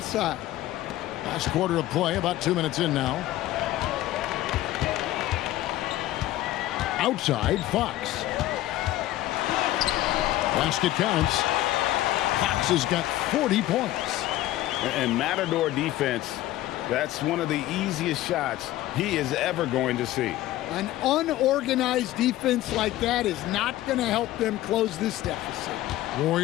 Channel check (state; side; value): quieter; right; 15.1 dB